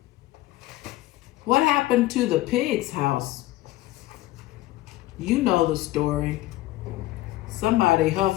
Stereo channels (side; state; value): right; quieter; 16.8 dB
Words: What happened to the pig's house? You know the story. Somebody